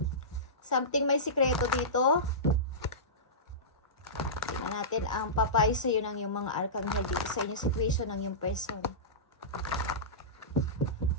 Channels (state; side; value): normal; both; correlation -0.20